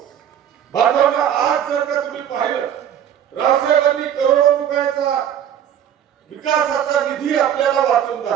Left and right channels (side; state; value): left; quieter; 9.7 dB